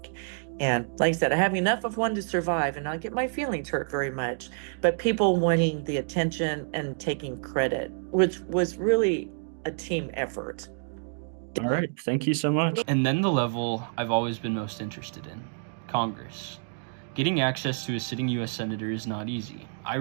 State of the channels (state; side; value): silent; left; digital silence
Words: And like I said, I have enough of one to survive and not get my feelings hurt very much. But people wanting the attention and taking credit, which was really a team effort. All right. Thank you so much. And then the level I've always been most interested in, Congress. Getting access to a sitting U.S. senator is not easy. I